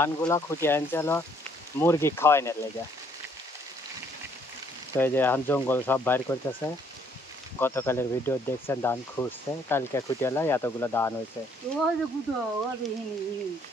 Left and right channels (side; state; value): both; normal; correlation 0.66